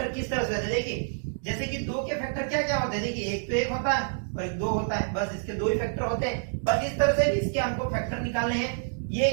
किस तरह से होते हैं। देखिए जैसे कि 2 के फैक्टर क्या क्या होते हैं, देखिए एक तो 1 होता है और एक 2 होता है, बस इसके 2 ही फैक्टर होते हैं। बस इस तरह से इसके हमको फैक्टर निकालने हैं। ये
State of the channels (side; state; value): left; silent; digital silence